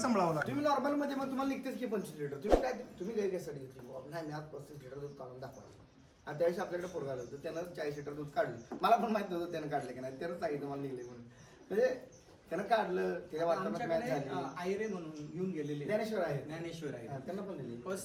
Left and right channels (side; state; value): both; identical; correlation 1.00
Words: लागतं. तुम्ही नॉर्मल मध्ये मग तुम्हाला निघतेच की 25 लिटर. तुम्ही काय तुम्ही गाय कशासाठी घेतली बाबा, नाही मी आज 35 लिटर दूध काढून दाखवायचं. आणि त्यावेळेस आपल्याकडे पोरगा आलं होतं, त्यानं 40 लिटर दूध काढलं. मला पण माहित नव्हतं त्यानं काढलं की नाही, त्यानं सांगितलं मला निघले म्हणून. म्हणजे त्यानं काढलं, त्याच्या वातावरणात मॅच आमच्याकडे झाली. आयरे म्हणून घेऊन गेलेले ज्ञानेश्वर आहे. ज्ञानेश्वर आहे, हा, त्यांना पण दिली.